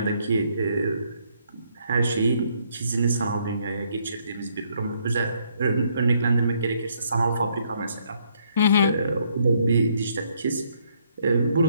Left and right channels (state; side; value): inverted; both; correlation -0.70